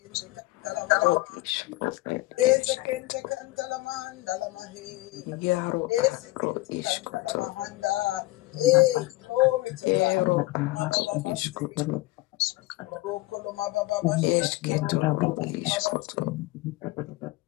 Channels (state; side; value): quieter; right; 19.9 dB